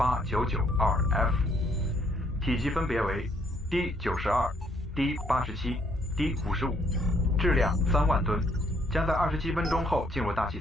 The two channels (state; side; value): normal; both; correlation 0.67